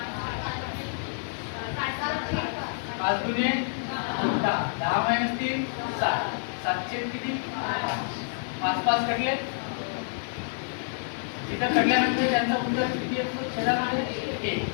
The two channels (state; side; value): silent; right; 59 dB below the other